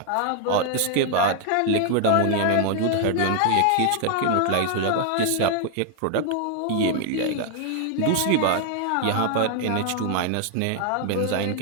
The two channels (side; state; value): both; different; correlation 0.00